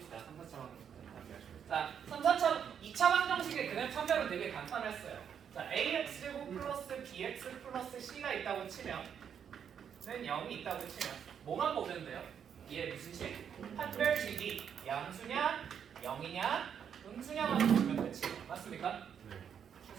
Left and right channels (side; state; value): left; quieter; 8.0 dB